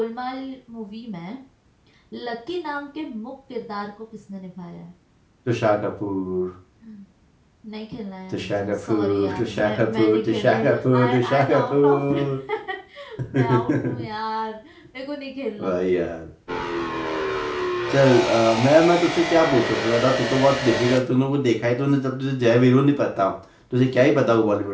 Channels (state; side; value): identical; both; correlation 1.00